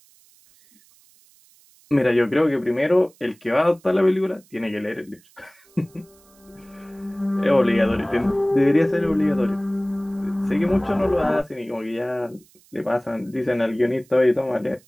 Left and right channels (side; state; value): right; noise; hiss, 30 dB below the sound